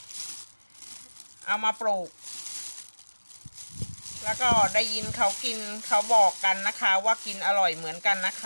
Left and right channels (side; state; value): both; inverted; correlation -1.00